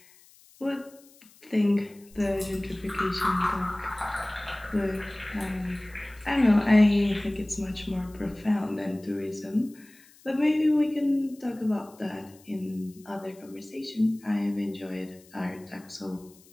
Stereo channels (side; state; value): left; noise; hiss, 26 dB below the sound